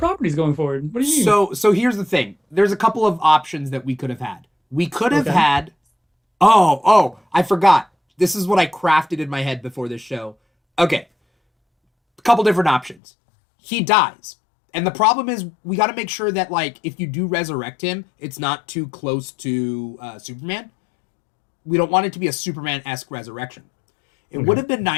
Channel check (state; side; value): drops out; right; at 13.0 s